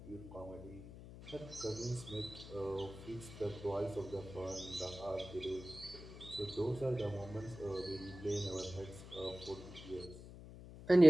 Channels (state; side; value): noise; left; hum, 14 dB below the sound